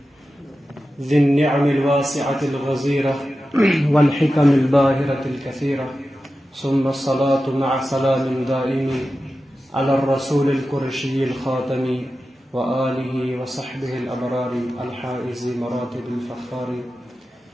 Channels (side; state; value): both; normal; correlation 0.93